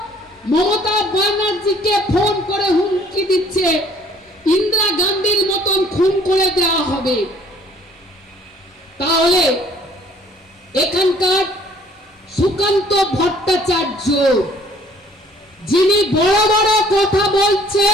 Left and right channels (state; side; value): normal; both; correlation 0.58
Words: মমতা ব্যানার্জিকে ফোন করে হুমকি দিচ্ছে ইন্দিরা গান্ধীর মতন খুন করে দেওয়া হবে। তাহলে এখানকার সুকান্ত ভট্টাচার্য যিনি বড় বড় কথা